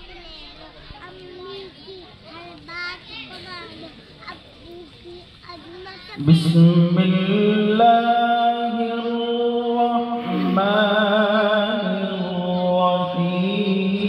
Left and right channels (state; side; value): identical; both; correlation 1.00